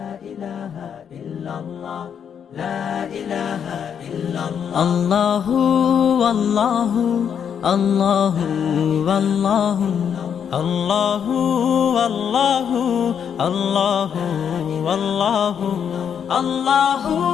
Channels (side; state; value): right; quieter; 7.9 dB